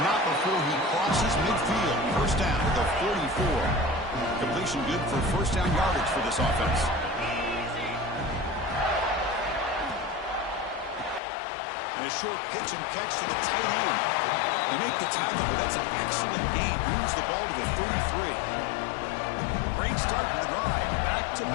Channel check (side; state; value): right; drops out; at 11.2 s